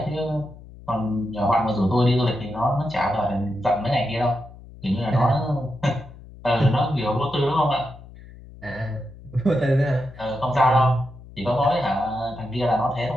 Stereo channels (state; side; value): noise; left; hum, 18 dB below the sound